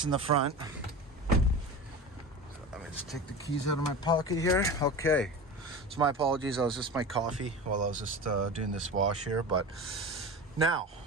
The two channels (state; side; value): normal; both; correlation 0.30